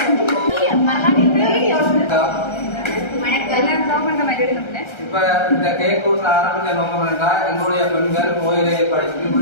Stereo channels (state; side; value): late; right; 1.3 ms